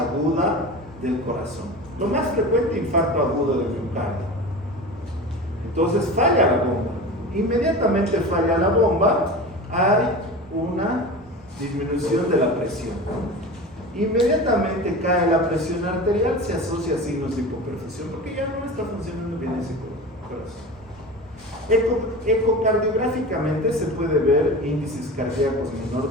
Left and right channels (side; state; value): both; normal; correlation 0.31